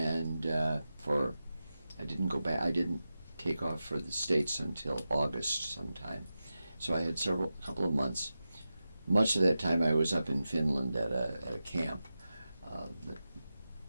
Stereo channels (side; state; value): both; inverted; correlation -0.92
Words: I didn't go back. I didn't take off for the States until August sometime. So I had a couple of months. Much of that time I was up in Finland at a camp.